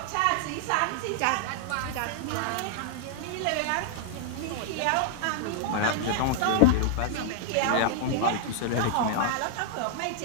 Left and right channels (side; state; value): both; different; correlation -0.01